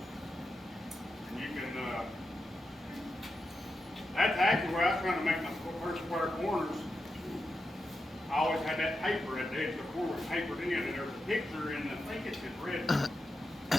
And you can, that's actually where I was trying to make my first square corners. I always had that paper at the edge of the corner was papered in, and there's a picture in, I think it's in red.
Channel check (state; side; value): normal; both; correlation 0.88